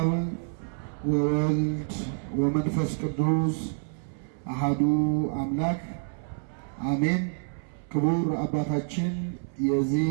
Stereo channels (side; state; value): left; silent; 60 dB below the other